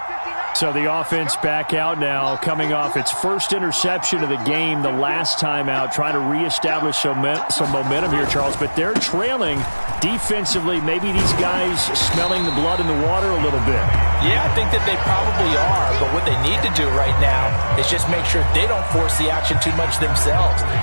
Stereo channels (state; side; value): inverted; both; correlation -1.00